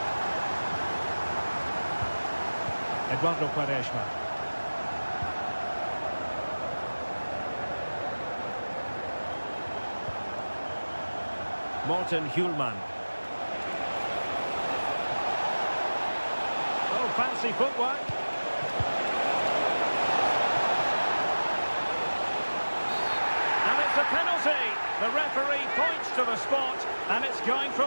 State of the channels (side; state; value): both; inverted; correlation -1.00